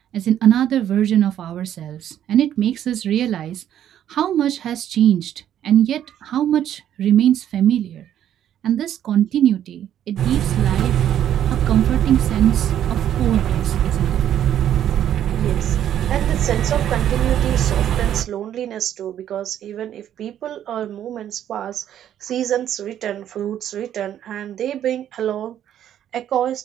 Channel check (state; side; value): quieter; left; 10.7 dB